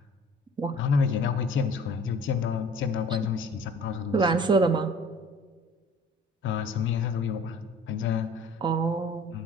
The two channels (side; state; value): both; normal; correlation 0.48